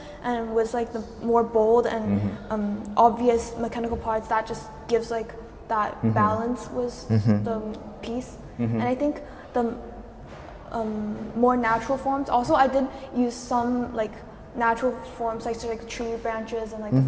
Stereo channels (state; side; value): identical; both; correlation 1.00